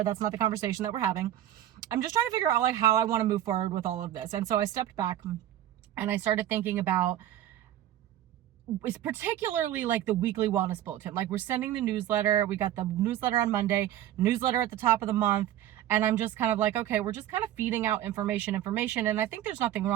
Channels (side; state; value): left; quieter; 12.2 dB